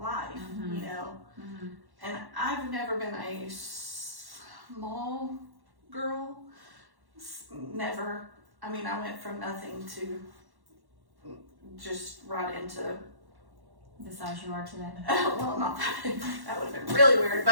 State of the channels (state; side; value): late; left; 1.1 ms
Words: you know. And I've never been a small girl. Never. I mean, I went from nothing to just right into The size you are today. well, not that. That would have been really weird,